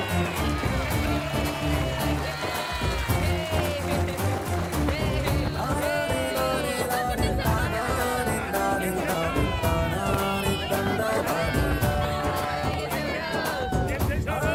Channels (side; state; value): both; identical; correlation 1.00